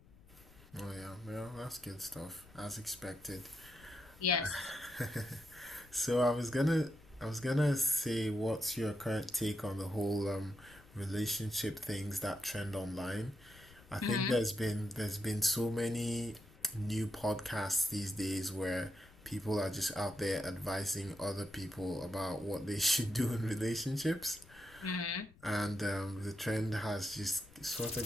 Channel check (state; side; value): noise; left; rumble, 23 dB below the sound